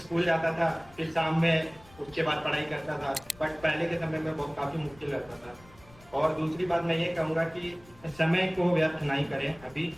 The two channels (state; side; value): noise; left; rumble, 24 dB below the sound